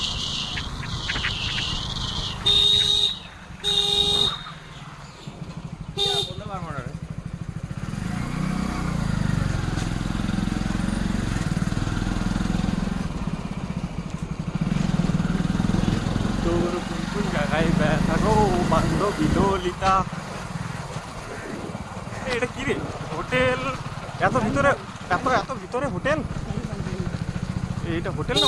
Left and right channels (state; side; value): identical; both; correlation 1.00